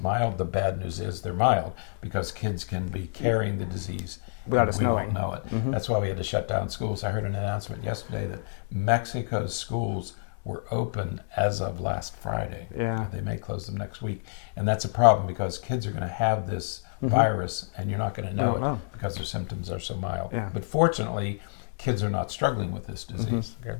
mild. The bad news is they're mild because kids can be carrying the disease and we won't know it. That's why we had to shut down schools. I heard an announcement yesterday that Mexico's schools were open as of last Friday. They may close them next week. And that's a problem because kids are going to have this virus and you're not going to know it because their symptoms are so mild. But fortunately, kids are not struggling with this disease.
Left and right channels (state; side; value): silent; right; 59 dB below the other